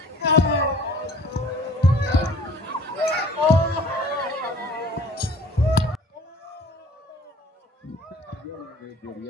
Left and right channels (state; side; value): normal; both; correlation 0.50